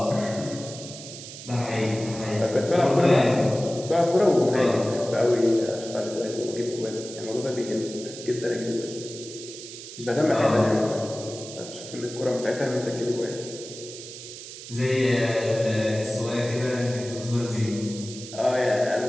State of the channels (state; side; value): noise; right; hiss, 13 dB below the sound